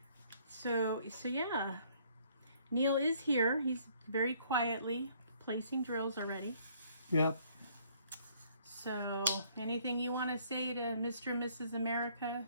So yeah, Neil is here. He's very quietly placing drills already. Yep. So anything you want to say to Mr. and Mrs. America,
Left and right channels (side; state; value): both; inverted; correlation -0.63